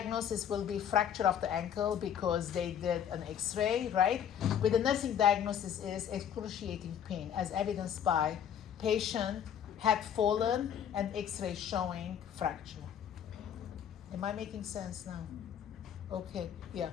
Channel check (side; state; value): right; quieter; 9.0 dB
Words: will be fracture of the ankle because they did an X-ray, right? With the nursing diagnosis is excruciating pain as evidenced by patient had fallen and X-ray showing fracture. Am I making sense now? Okay, yeah.